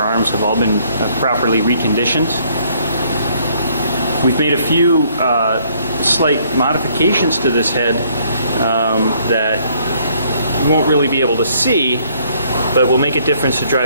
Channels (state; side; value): inverted; both; correlation -0.65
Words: have all been properly reconditioned. We've made a few slight modifications to this head that you won't really be able to see, but will make a difference to